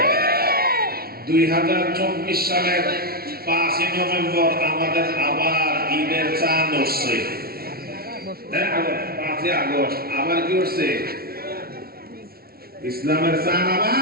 2024 সালের 5 নভেম্বর আমাদের আবার ঈদের চাঁদ উঠছে। 5 আগস্ট আবার কি উঠছে? ইসলামের চাঁদ আবার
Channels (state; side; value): late; left; 0.44 ms